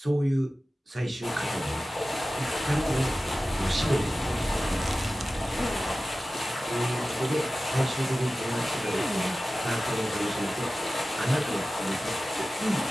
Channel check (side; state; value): both; normal; correlation 0.95